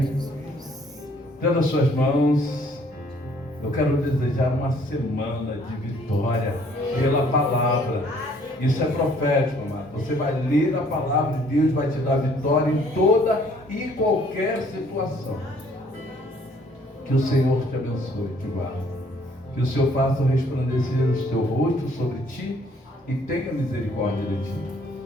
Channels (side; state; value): both; normal; correlation 0.61